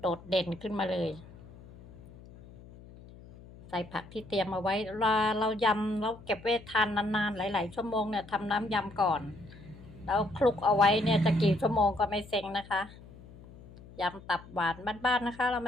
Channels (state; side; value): noise; left; hum, 19 dB below the sound